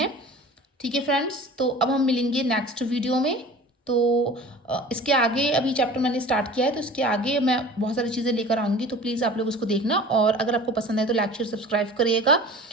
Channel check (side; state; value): both; normal; correlation 0.41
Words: ठीक है फ्रेंड्स, तो अब हम मिलेंगे नेक्स्ट वीडियो में। तो इसके आगे अभी चैप्टर मैंने स्टार्ट किया है, तो इसके आगे मैं बहुत सारी चीज़ें लेकर आऊँगी, तो प्लीज़ आप लोग उसको देखना। और अगर आपको पसंद है तो लाइक शेयर सब्सक्राइब करिएगा।